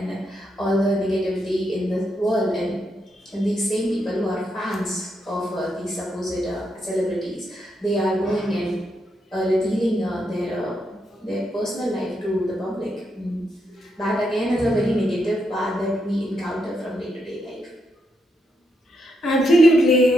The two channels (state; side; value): normal; both; correlation 0.81